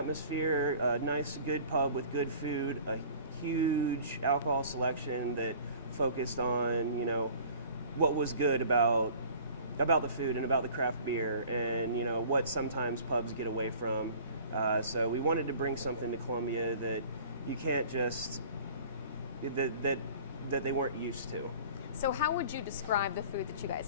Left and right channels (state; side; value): inverted; both; correlation -0.47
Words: a nice, good pub with good food, a huge alcohol selection that focused on, what was good about the food and about the craft beer, and what sometimes pubs get away from. So we wanted to bring something to Columbia that you can't just that they weren't used to. So how would you describe the food that you